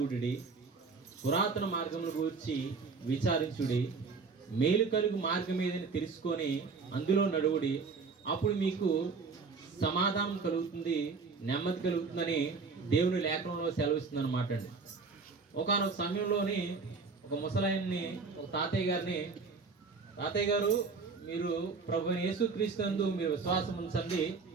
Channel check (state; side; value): quieter; left; 4.6 dB